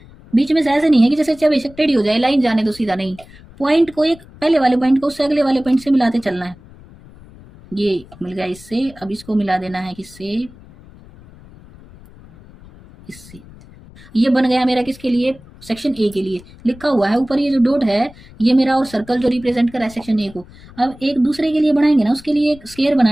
बीच में से ऐसे नहीं है कि जैसे चाहे बेशक टेढ़ी हो जाए लाइन जाने तो सीधा, नहीं, पॉइंट को एक पहले वाले पॉइंट को उससे अगले वाले पॉइंट से मिलाते चलना है। ये मिल गया इससे, अब इसको मिला देना है किससे, इससे, ये बन गया मेरा किसके लिए, सेक्शन ए के लिए, लिखा हुआ है ऊपर ये जो डॉट है, ये मेरा, और सर्कल जो रिप्रेजेंट कर रहा है सेक्शन ए को। अब एक दूसरे के लिए बनाएंगे ना, उसके लिए एक स्क्वायर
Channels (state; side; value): noise; left; rumble, 22 dB below the sound